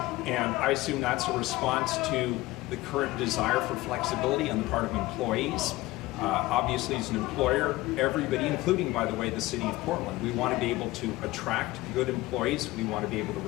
And I assume that's a response to the current desire for flexibility on the part of employees. Obviously, as an employer, everybody, including, by the way, the city of Portland, we want to be able to attract good employees. We want to be able to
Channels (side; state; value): right; quieter; 18.9 dB